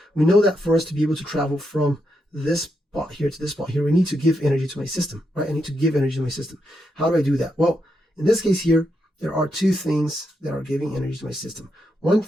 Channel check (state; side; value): normal; both; correlation 0.82